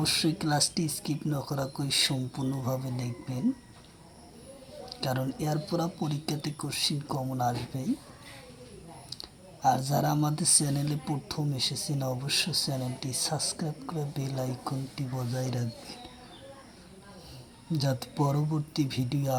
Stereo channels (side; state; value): both; identical; correlation 1.00